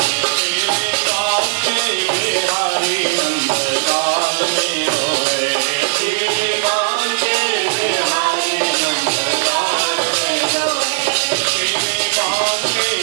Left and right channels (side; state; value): left; silent; 64 dB below the other